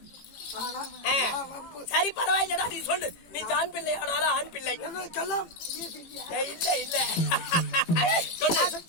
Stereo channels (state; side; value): late; right; 18 ms